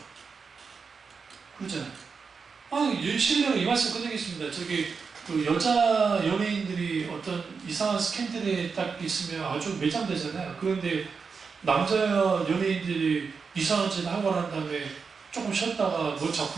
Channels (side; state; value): left; quieter; 5.3 dB